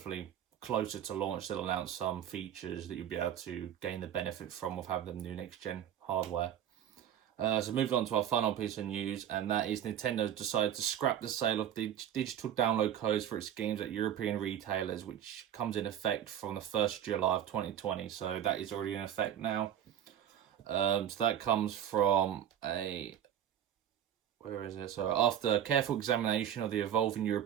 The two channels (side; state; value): left; quieter; 10.2 dB